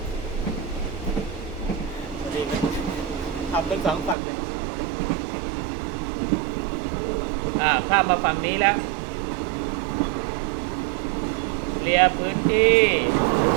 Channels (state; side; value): drops out; left; at 4.2 s